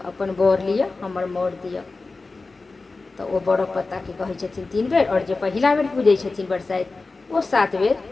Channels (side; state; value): right; quieter; 3.7 dB